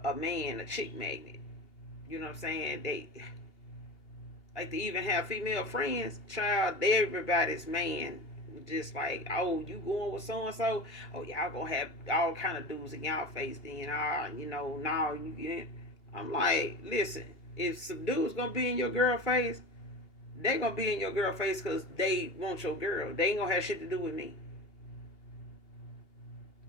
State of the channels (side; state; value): right; late; 2.8 ms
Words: man, a chick magnet. You know what I'm saying? They like to even have female friends. Child, everybody's man. Just like, oh, you going with so and so? Oh, y'all gonna have all kind of dudes in y'all face. Then, now you get. I'm like, listen, if some dudes gonna be in your girl face, they gonna be in your girl face because they want your girl. They ain't gonna have shit to do with me.